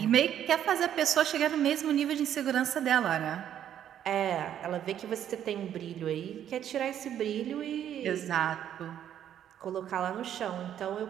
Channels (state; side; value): quieter; left; 10.2 dB